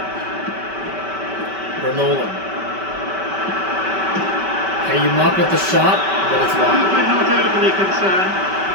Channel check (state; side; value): late; left; 5.2 ms